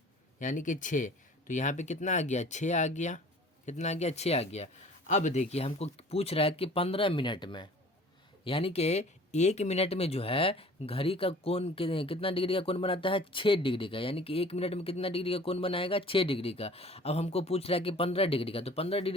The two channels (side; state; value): both; normal; correlation 0.48